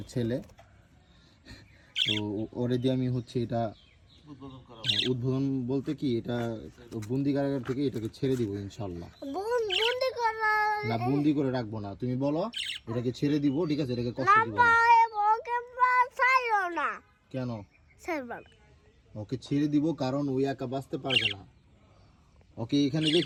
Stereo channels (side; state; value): both; identical; correlation 1.00